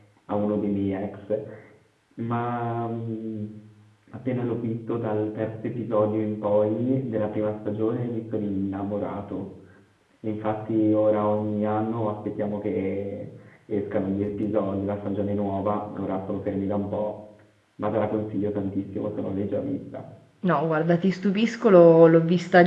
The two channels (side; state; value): both; identical; correlation 1.00